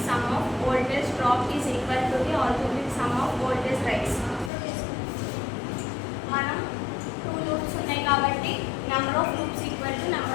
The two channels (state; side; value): drops out; right; at 4.5 s